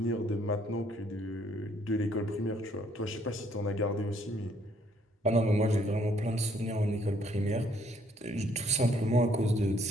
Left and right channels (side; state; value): both; normal; correlation 0.66